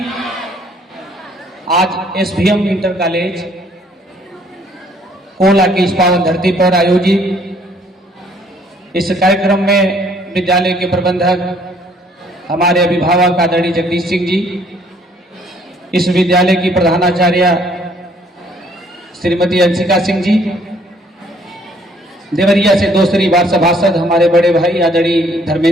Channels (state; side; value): normal; both; correlation 0.62